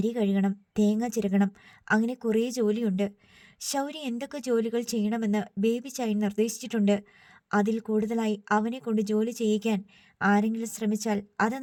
കഴുകണം, തേങ്ങ ചിരകണം, അങ്ങനെ കുറേ ജോലിയുണ്ട്. ശൗരി എന്തൊക്കെ ജോലികൾ ചെയ്യണമെന്ന് ബേബി ചായൻ നിർദ്ദേശിച്ചിട്ടുണ്ട്. അതിൽ കൂടുതലായി അവനെ കൊണ്ട് ജോലി ചെയ്യിക്കാൻ ആരെങ്കിലും ശ്രമിച്ചാൽ അത്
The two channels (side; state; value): both; identical; correlation 1.00